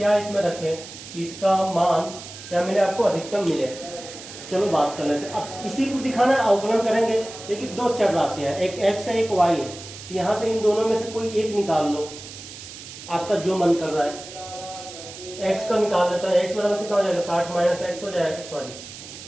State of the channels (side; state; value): right; noise; hiss, 14 dB below the sound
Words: इसमें रखें, इसका मान क्या मिले आपको अधिकतम मिले। चलो बात कर लेते हैं। अब इसी को दिखाना है, अवकलन करेंगे। देखिए दो चर राशियां हैं, एक x है एक y है, तो यहां से इन दोनों में से कोई एक निकाल लो, आपका जो मन कर रहा है। x का निकाल लेता है, x बराबर कितना हो जाएगा 60 माइनस x हो जाएगा, सॉरी